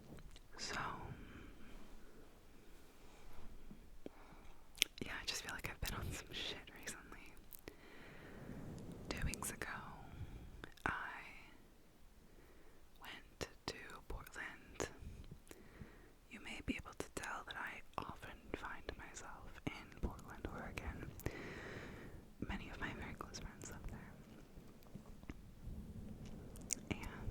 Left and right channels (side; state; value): both; identical; correlation 1.00